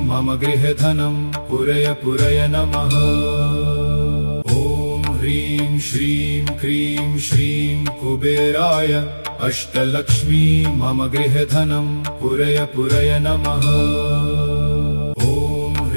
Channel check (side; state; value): both; inverted; correlation -1.00